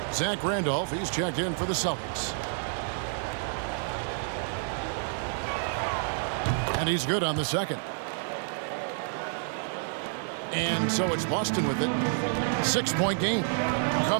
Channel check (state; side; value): silent; left; 58 dB below the other